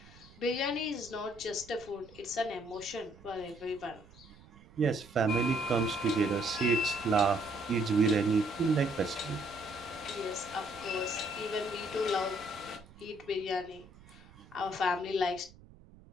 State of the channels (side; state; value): right; noise; rumble, 23 dB below the sound